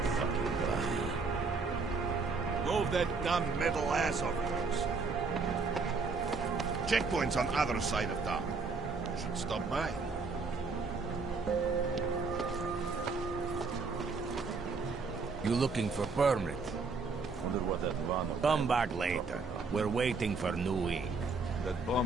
said dumb middle ass overlords. Checkpoint's on other side of town. Should stop by. You looking for permit? Come back later. We're waiting for new ink. That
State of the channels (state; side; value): quieter; left; 4.4 dB